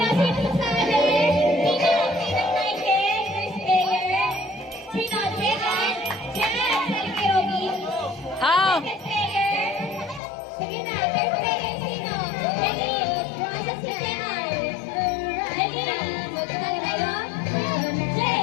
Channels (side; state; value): right; drops out; at 10.2 s